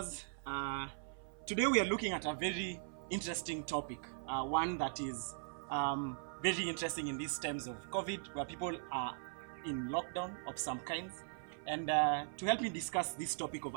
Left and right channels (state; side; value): silent; left; 51 dB below the other